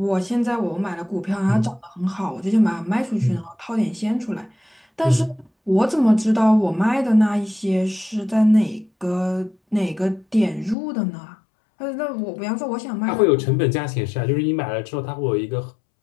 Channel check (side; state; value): right; drops out; at 10.8 s